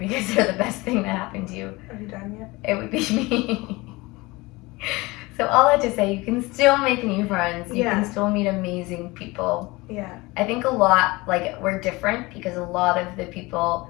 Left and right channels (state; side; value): quieter; right; 22.6 dB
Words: they're the best thing that happened to you. Are you done yet? It would be me. So all that to say, you can still make new friends. You can still meet amazing people. Yeah. I think a lot, like, we're different because a lot of the people